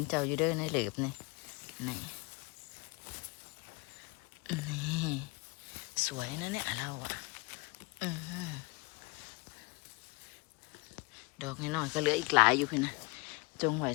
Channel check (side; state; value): right; quieter; 26.9 dB